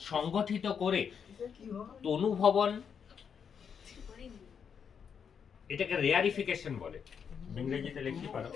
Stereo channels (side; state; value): right; quieter; 7.1 dB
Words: সংগঠিত করে, তনুভবন এটাকে রেয়ারিফিকেশন বলে, ইংরেজিতে লিখতে পারো